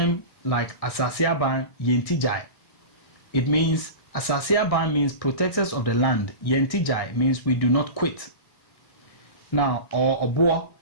like Asasiaban Yentijai. It means, Asasiaban means protectors of the land. Yentijai means we do not quit. Now, or Obo,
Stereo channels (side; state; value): right; late; 1.6 ms